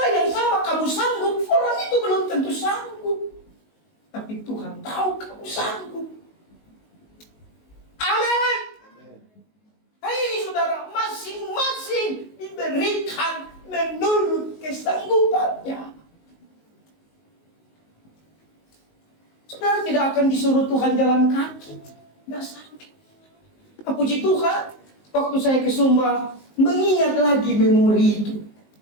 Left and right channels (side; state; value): right; late; 19 ms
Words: yang sama kamu sanggup, orang itu belum tentu sanggup. Tapi Tuhan tahu kamu sanggup. Amin. Hei saudara, masing-masing diberikan menurut kesanggupannya. Saudara tidak akan disuruh Tuhan jalan kaki. Tidak sakit. Puji Tuhan, waktu saya ke Sumba, mengingat lagi memori itu.